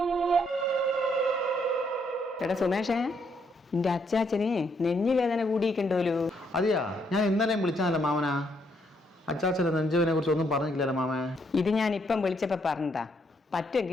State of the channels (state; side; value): normal; both; correlation 0.73